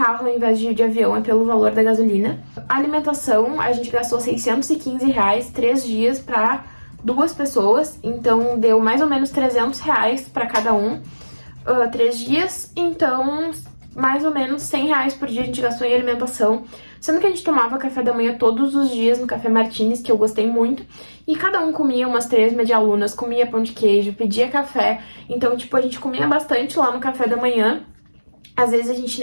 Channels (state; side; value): inverted; both; correlation -1.00